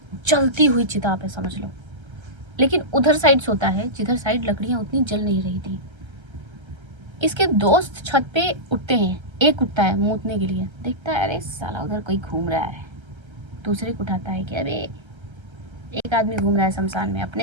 जलती हुई चिता पे समझ लो। लेकिन उधर साइड सोता है जिधर साइड लकड़ियाँ उतनी जल नहीं रही थी। इसके दोस्त छत पे उठते हैं, एक उठता है मूतने के लिए, देखता है अरे साला उधर कोई घूम रहा है। दूसरे को उठाता है कि अबे एक आदमी घूम रहा है शमशान में,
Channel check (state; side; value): late; left; 1.3 ms